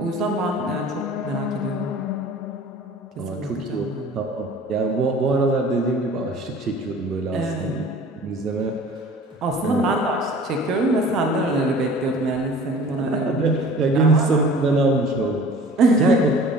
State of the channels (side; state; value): both; normal; correlation 0.46